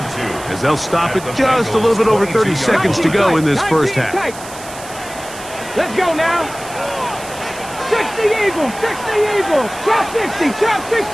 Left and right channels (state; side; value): noise; right; hiss, 15 dB below the sound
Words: as they'll stop it just a little bit over 30 seconds to go in this first half. Let's go now. 60 Eagles, 60 Eagles. Chop 60, chop